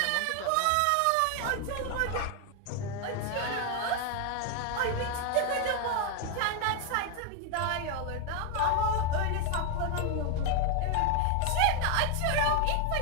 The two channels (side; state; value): both; different; correlation 0.01